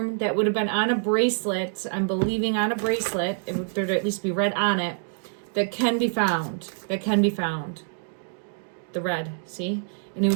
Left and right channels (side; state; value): left; silent; digital silence